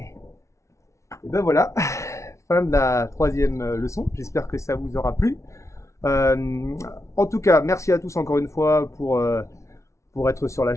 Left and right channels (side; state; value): right; late; 0.14 ms